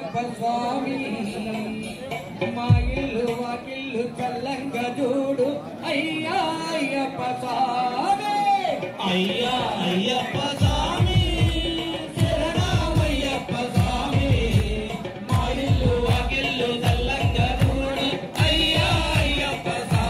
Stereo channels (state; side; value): identical; both; correlation 1.00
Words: స్వామి మా ఇల్లు వాకిల్లు చల్లంగా చూడు అయ్యప్ప స్వామి అయ్యప్ప స్వామి శరణమయ్యప్ప స్వామి మా ఇల్లు వాకిల్లు చల్లంగా చూడు అయ్యప్ప